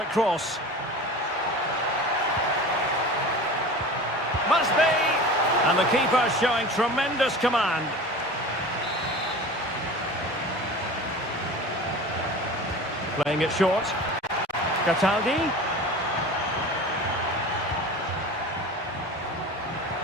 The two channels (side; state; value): both; normal; correlation 0.35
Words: cross. Must be! And the keeper showing tremendous command. Playing it short. Cataldi.